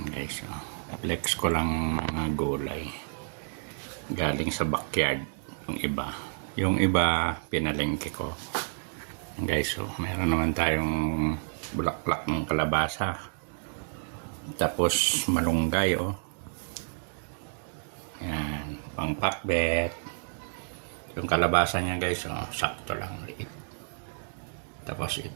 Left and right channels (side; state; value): left; silent; digital silence